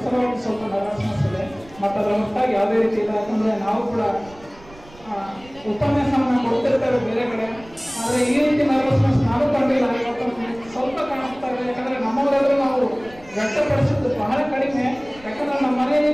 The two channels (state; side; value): noise; right; rumble, 23 dB below the sound